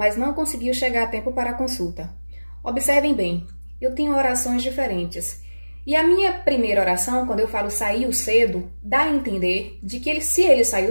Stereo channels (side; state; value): both; inverted; correlation -1.00